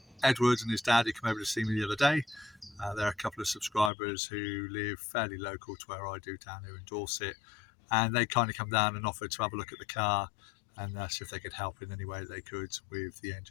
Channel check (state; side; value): drops out; right; at 3.9 s